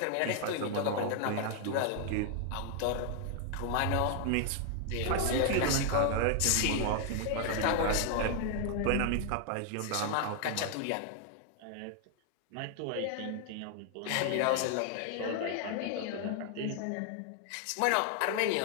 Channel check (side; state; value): both; different; correlation 0.00